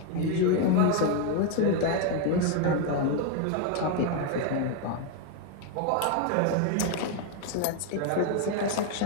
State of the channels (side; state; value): both; different; correlation 0.01